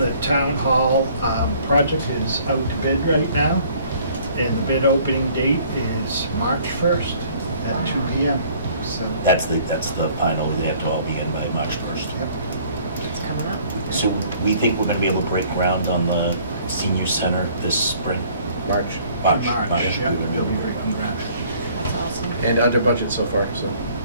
town hall project is out to bid right now, and the bid opening date is March 1st at 2 PM. So, That's the final, they have to all begin by March 1st. It's coming up. So we think we're gonna be able to break ground on the senior center this spring? March. March, yeah, we're gonna be we'll able be to break breaking ground. That's awesome. And under budget so far, so.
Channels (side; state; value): both; inverted; correlation -0.57